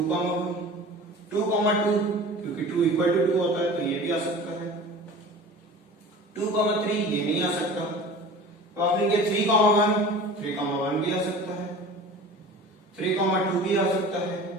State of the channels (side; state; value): both; normal; correlation 0.39